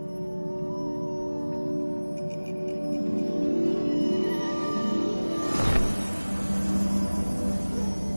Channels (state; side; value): inverted; both; correlation -1.00